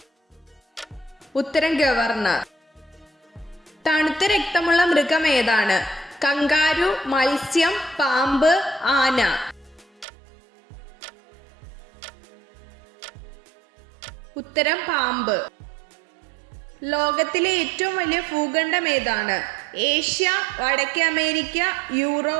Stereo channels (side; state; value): left; drops out; at 10.1 s